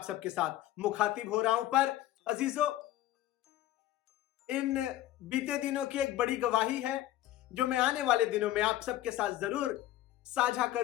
सबके साथ मुखातिब हो रहा हूं, पर अजीजों, इन बीते दिनों की एक बड़ी गवाही है जो मैं आने वाले दिनों में आप सबके साथ जरूर साझा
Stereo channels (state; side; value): quieter; right; 14.3 dB